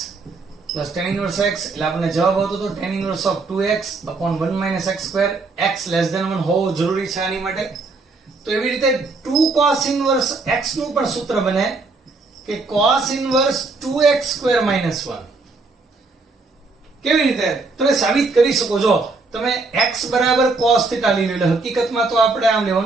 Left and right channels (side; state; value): left; quieter; 3.7 dB